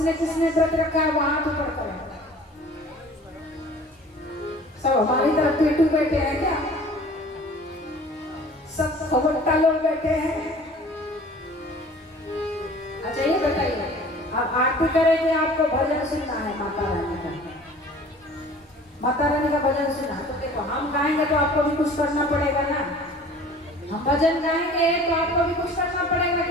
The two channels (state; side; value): normal; both; correlation 0.47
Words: किसने व्रत रखा है वहां तो पढ़कर सब हमारी तरफ पेटू बैठे हैं क्या? सब खबरटा लोग बैठे हैं। अच्छा ये बताइए, अब आरती करेंगे, आपको भजन सुनना है माता रानी का, माता रानी का भजन सुनना। तो देखो हम गाएंगे तो आपको भी कुछ करना पड़ेगा ना। हम भजन गाएंगे तो आपको भी कुछ करना पड़ेगा